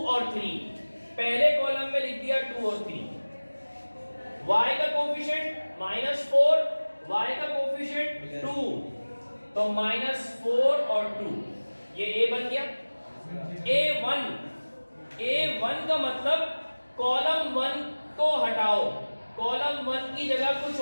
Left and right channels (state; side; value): inverted; both; correlation -1.00